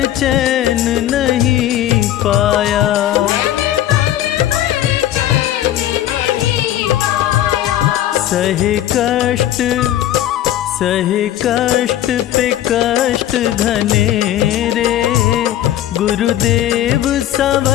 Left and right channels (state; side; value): quieter; right; 12.5 dB